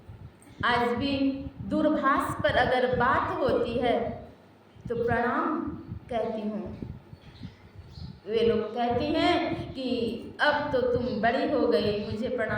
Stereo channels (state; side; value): identical; both; correlation 1.00